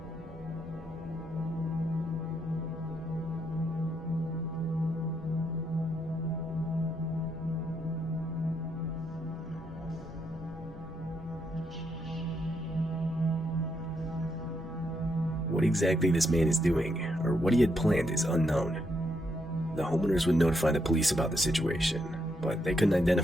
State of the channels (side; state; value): both; normal; correlation 0.78